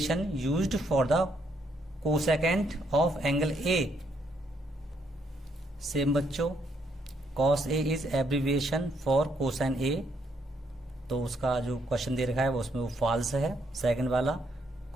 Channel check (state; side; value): normal; both; correlation 0.73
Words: used for the cosecant of angle a। Same बच्चों, cos a is abbreviation for cosine a तो उसका जो क्वेश्चन दे रखा है वो उसमें वो फॉल्स है। सेकंड वाला,